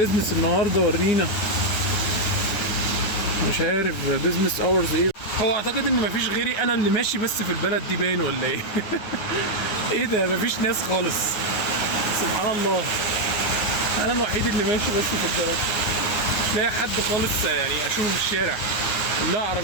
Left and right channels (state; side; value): late; right; 9.5 ms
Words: النهارده؟ ورينا. مش عارف بيزنس اورز ايه. هو اعتقد ان مفيش غيري انا اللي ماشي بس في البلد دي باين ولا ايه؟ ايه ده؟ مفيش ناس خالص، سبحان الله. انا الوحيد اللي ماشي بس في البلد، مش لاقي حد خالص يعني اشوفه في الشارع. كلها